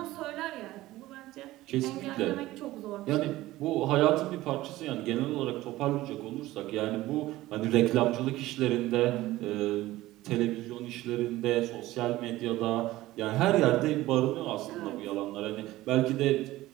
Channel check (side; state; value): left; quieter; 16.9 dB